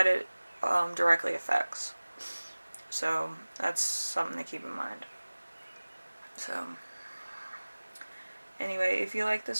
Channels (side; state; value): both; inverted; correlation -1.00